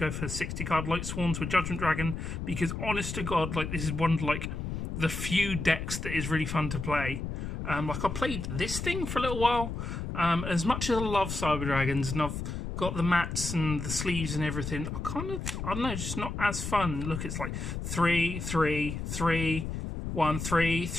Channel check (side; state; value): left; noise; rumble, 5 dB below the sound